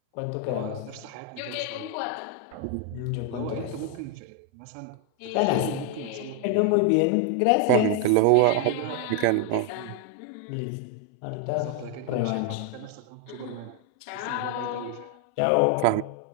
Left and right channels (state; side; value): different; both; correlation 0.00